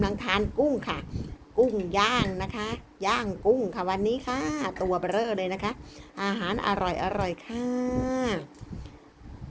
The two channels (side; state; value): both; identical; correlation 1.00